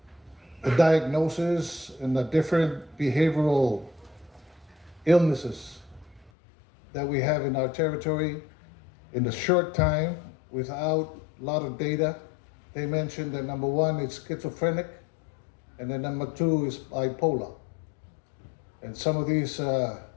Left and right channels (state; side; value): drops out; right; at 6.3 s